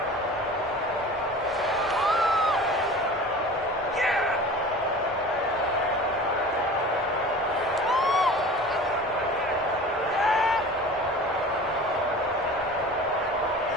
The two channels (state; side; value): normal; both; correlation 0.39